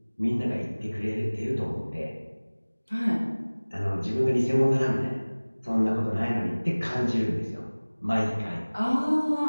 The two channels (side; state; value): both; inverted; correlation -1.00